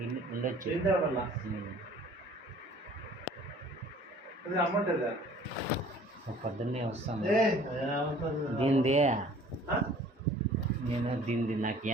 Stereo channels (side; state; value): both; normal; correlation 0.51